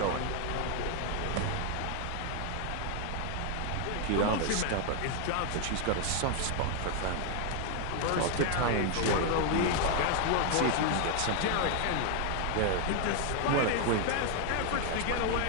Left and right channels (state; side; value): different; both; correlation 0.00